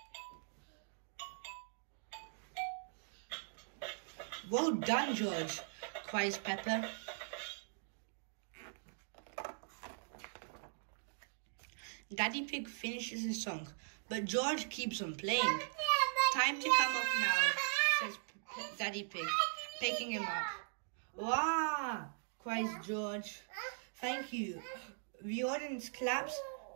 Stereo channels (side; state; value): left; silent; digital silence